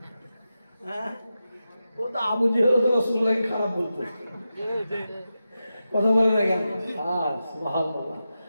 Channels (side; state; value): both; inverted; correlation -0.91